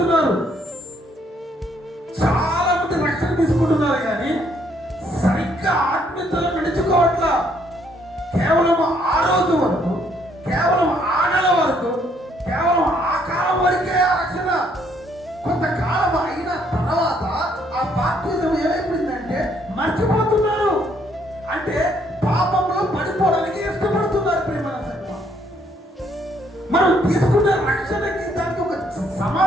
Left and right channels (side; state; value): both; normal; correlation 0.68